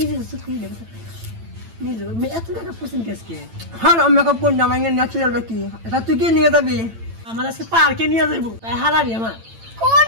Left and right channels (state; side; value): late; left; 8.9 ms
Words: সুখী রে নিজে মে এত টাকা পছন্দ কেসকে হ্যাঁ মেকআপ কোন না মানে ন্যাচারাল দেখি এটা তুই কি নিয়ে যাবি আমার আজকে পার্কে নিয়ে যাইব তাই হারারি আমার কোন